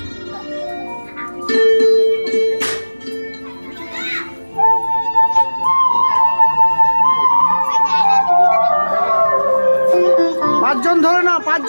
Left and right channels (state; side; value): inverted; both; correlation -1.00